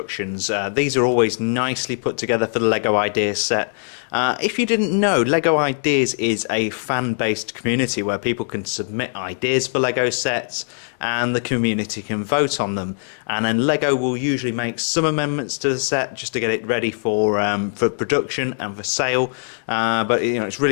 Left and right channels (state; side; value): silent; right; digital silence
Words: These are always nicely put together for the LEGO Ideas set. If you didn't know, LEGO Ideas is a fan-based community where people can submit ideas for LEGO sets and the community can vote on them. And then LEGO will usually make some amendments to the set just to get it ready for production and for sale. But it's